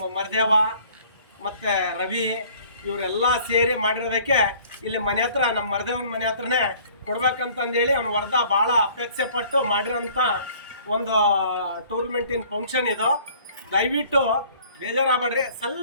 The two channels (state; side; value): inverted; both; correlation -0.54